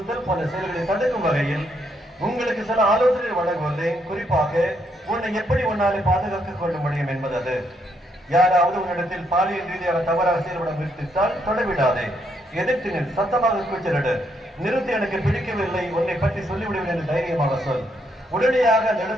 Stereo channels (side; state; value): both; normal; correlation 0.75